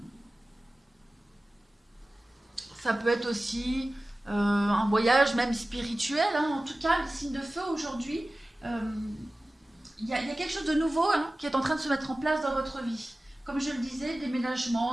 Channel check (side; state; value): both; normal; correlation 0.97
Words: ça peut être aussi un voyage même spirituel. Hein. En tout cas, le signe de feu aujourd'hui, il y a quelque chose de nouveau qui est en train de se mettre en place dans votre vie. Comme je le disais,